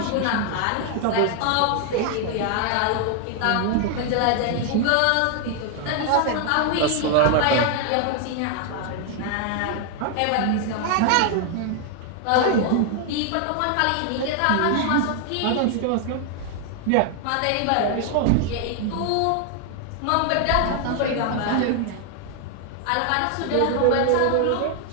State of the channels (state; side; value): different; both; correlation 0.00